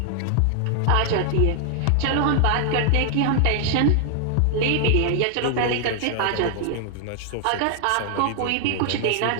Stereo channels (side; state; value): both; different; correlation 0.00